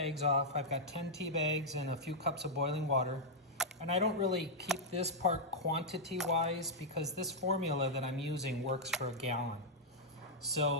off. I've got 10 tea bags and a few cups of boiling water. And I don't really keep this part quantity-wise because this formula that I'm using works for a gallon.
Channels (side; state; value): both; normal; correlation -0.04